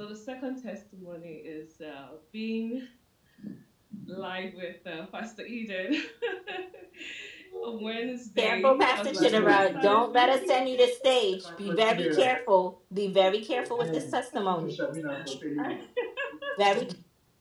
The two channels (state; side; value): identical; both; correlation 1.00